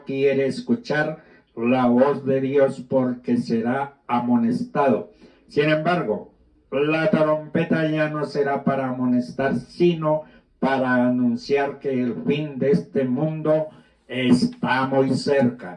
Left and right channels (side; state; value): both; identical; correlation 1.00